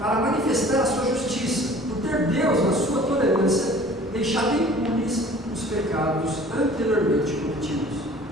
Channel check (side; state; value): both; normal; correlation 0.48